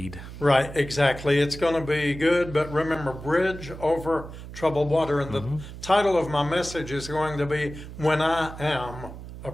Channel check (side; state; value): right; noise; hum, 12 dB below the sound